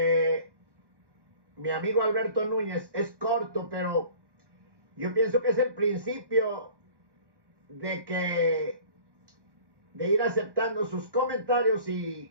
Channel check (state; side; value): late; left; 1.1 ms